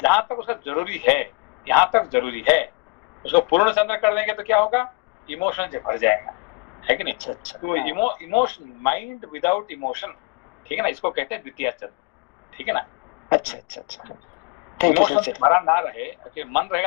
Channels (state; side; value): quieter; right; 27.8 dB